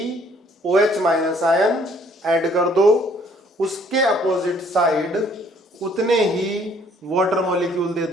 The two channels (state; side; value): normal; both; correlation 0.61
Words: OH माइनस आयन ऐड कर दो, उसके अपोजिट साइड उतने ही वाटर मॉलिक्यूल दे